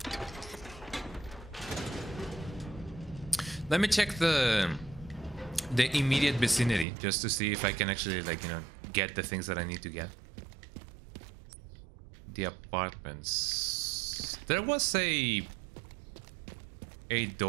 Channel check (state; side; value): drops out; left; at 6.9 s